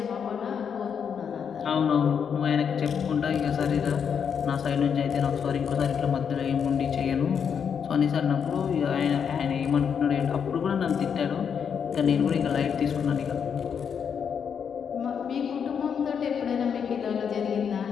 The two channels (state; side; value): quieter; right; 7.2 dB